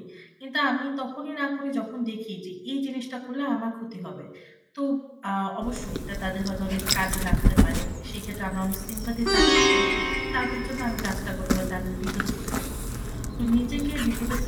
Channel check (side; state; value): both; identical; correlation 1.00